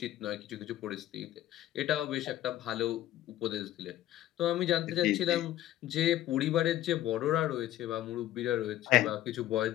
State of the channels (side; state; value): right; quieter; 13.8 dB